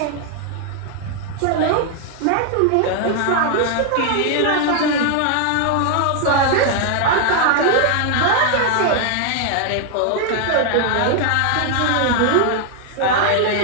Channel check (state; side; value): different; both; correlation 0.00